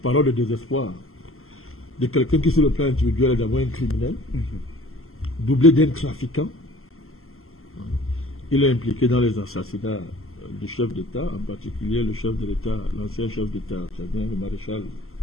paroles de désespoir de quelqu'un qui, sur le plan individuel, est d'abord un criminel, doublé d'un trafiquant. Il est impliqué dans les assassinats du chef d'État, en particulier le chef de l'État, l'ancien chef d'État, le maréchal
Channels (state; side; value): late; right; 0.62 ms